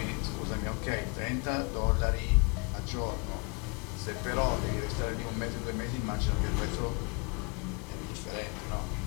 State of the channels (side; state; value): right; quieter; 31.2 dB